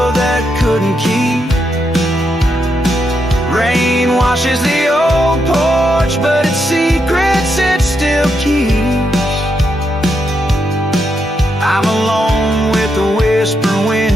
that couldn't keep. Rain washes the old porch, but its secrets it still keeps. I'm alone with the whispering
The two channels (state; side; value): normal; both; correlation 0.81